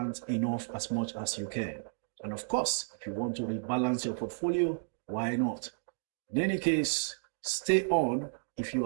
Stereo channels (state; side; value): silent; left; digital silence